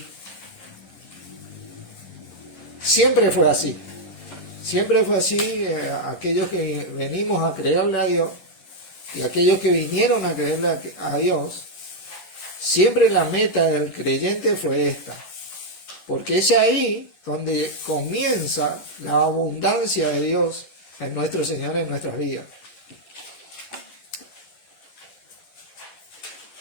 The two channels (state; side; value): late; right; 10 ms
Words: Siempre fue así. Aquellos que venimos a creerle a Dios y aquellos que vinieron a creerle a Dios, siempre la meta del creyente fue esta, porque es ahí donde comienza la abundancia de Dios en nuestro Señor, en nuestras vidas.